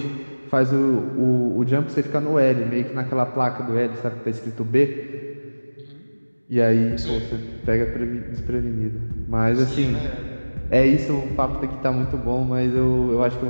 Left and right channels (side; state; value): both; inverted; correlation -1.00